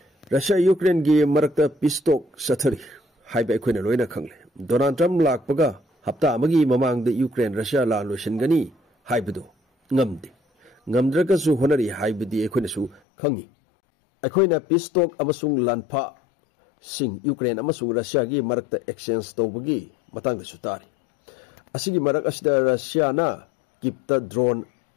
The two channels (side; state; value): right; drops out; at 13.0 s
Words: Russia Ukraine gi Marakta Pistok Satari, Hype Equinoina Kangle. Donald Trump Lak Paga, Hapta Magi Mamang the Ukraine Russia La Lushengani, Hybedo, Ngamdi. Ngamdrakasu Honori Hybe the Equinisu, Kangi. Equina Pistok Amasung Lanpa, Sing Ukraine Amasung Russia gi Marakta Exchange Tobagi, Matang the Sutari. Asigi Marakasda Russia na, keep the drone